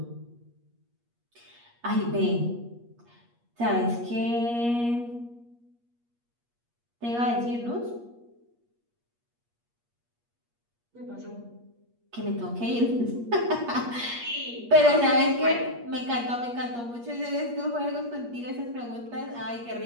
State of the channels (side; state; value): left; late; 8.4 ms